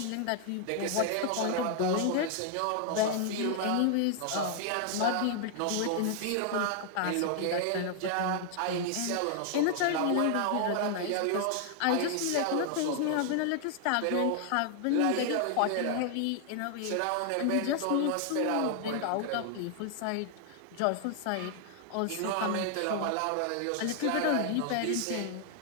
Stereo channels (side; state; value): both; different; correlation 0.00